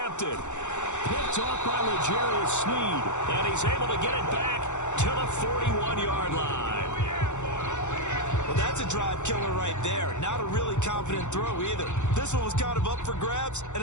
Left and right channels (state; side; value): late; right; 0.84 ms